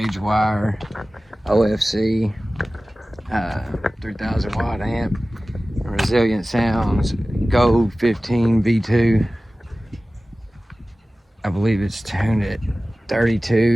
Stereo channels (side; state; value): both; normal; correlation 0.97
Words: wire, OFC, 3000 watt amp, resilient sounds, Gold 15 V2. I believe it's tuned at